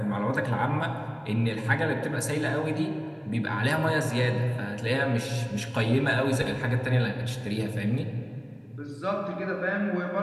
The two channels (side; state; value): both; identical; correlation 1.00